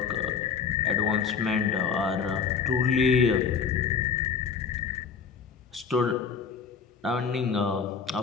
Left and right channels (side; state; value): right; quieter; 6.2 dB